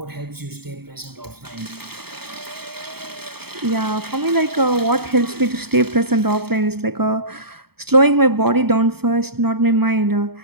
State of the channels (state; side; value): late; left; 0.96 ms